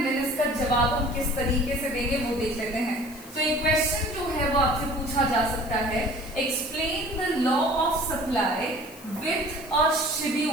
देन इसका जवाब हम किस तरीके से देंगे वो देख लेते हैं। तो एक क्वेश्चन जो है वो आपसे पूछा जा सकता है, explain the law of supply with a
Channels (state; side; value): noise; left; hiss, 19 dB below the sound